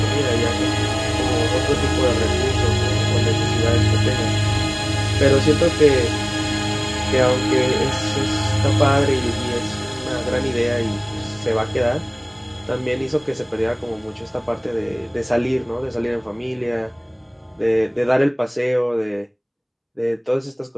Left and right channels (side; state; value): both; identical; correlation 1.00